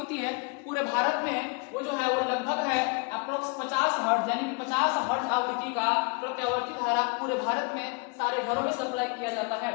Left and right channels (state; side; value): quieter; right; 32.2 dB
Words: है पूरे भारत में, वो जो है वो लगभग है अप्रोक्स 50 हर्ट्ज, यानी 50 हर्ट्ज आवृत्ति का प्रत्यावर्ती धारा पूरे भारत में सारे घरों में सप्लाई किया जाता है।